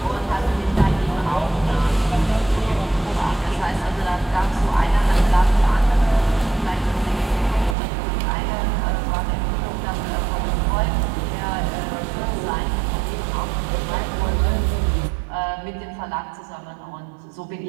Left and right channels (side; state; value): left; drops out; at 7.8 s